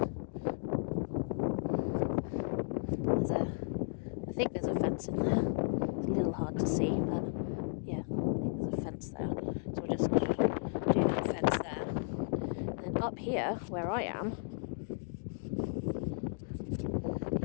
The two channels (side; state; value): right; silent; digital silence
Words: I think there's a fence in there. It's a little hard to see, but yeah, there's a fence there. So we'll just do that fence there. And then up here, where I am,